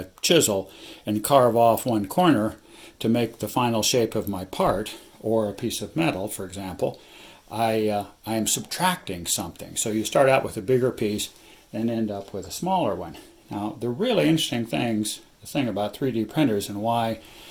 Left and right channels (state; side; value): identical; both; correlation 1.00